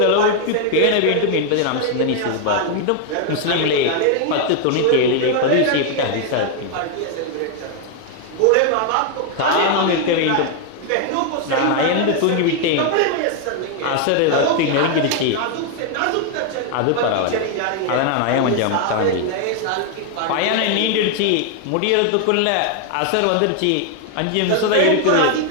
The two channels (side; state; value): both; different; correlation 0.00